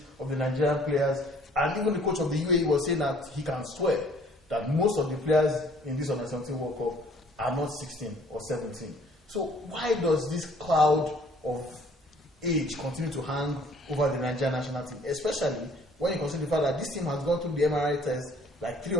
of the Nigerian players. And even the coach of the UAE was saying that he can swear that most of the players in this under 17 World Cup are not 16 or 17. So why does this cloud of age continue to hang over the Nigerian national team, especially when you consider the fact that this team has gone through the MRI test like 3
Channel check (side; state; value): both; normal; correlation 0.57